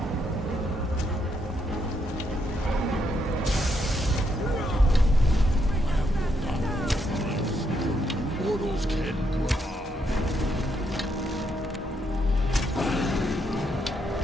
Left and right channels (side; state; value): both; normal; correlation 0.77